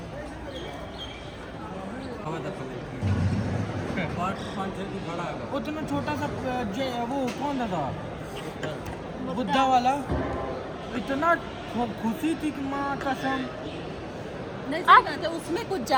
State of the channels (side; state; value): both; identical; correlation 1.00